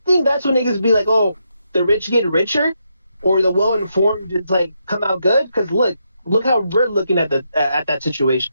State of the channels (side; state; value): both; inverted; correlation -0.81